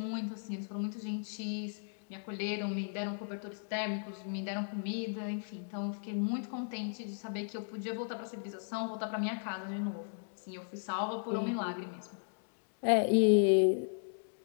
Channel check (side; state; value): right; silent; digital silence